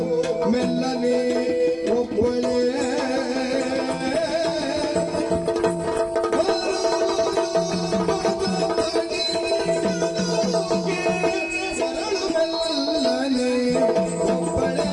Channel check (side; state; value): both; identical; correlation 1.00